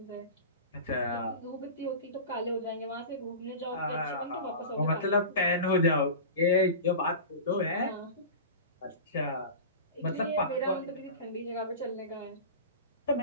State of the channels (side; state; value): both; inverted; correlation -0.31